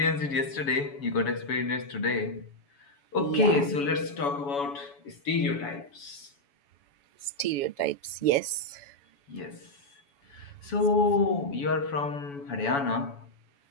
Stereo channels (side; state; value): right; late; 7.1 ms